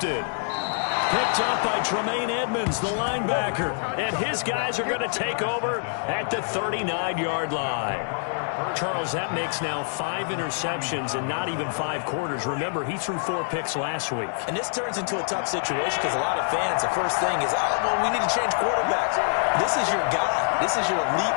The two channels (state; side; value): silent; right; digital silence